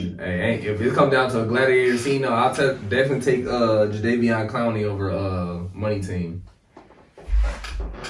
Hey, if it comes down to a gladiator scene, no, I'll definitely take Jadeveon Clowney over Money Team.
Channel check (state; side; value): identical; both; correlation 1.00